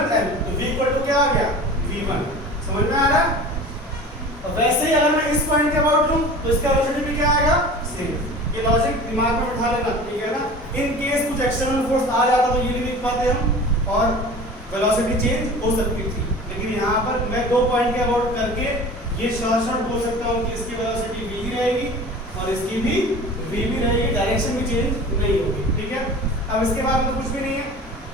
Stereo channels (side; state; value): both; normal; correlation 0.39